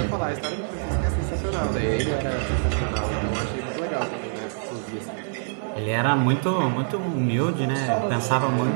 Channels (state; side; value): silent; left; digital silence